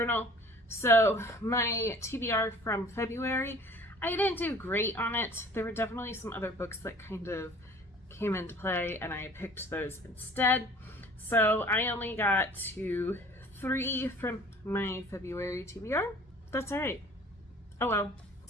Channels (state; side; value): normal; both; correlation 0.49